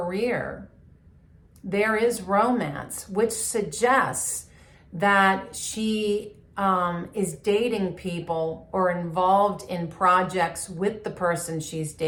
there is romance, which suggests that she is dating people or involved in projects with the person she's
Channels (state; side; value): identical; both; correlation 1.00